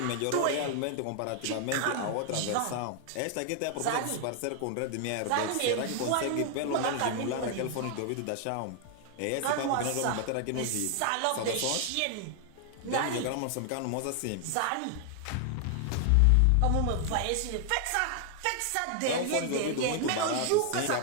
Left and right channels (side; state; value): both; different; correlation 0.00